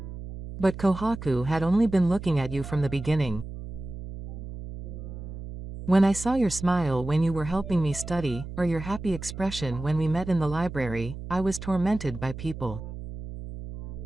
But kohaku had only been looking at you from the beginning. When I saw your smile when you were helping me study, or your happy expression when we met in the library, I was tormented by people.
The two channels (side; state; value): right; noise; hum, 10 dB below the sound